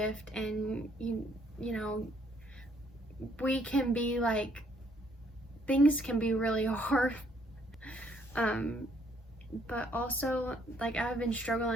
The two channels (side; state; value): both; normal; correlation 0.67